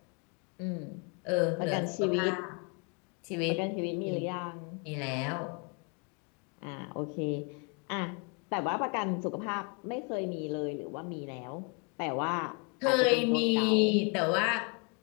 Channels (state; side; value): quieter; right; 34.4 dB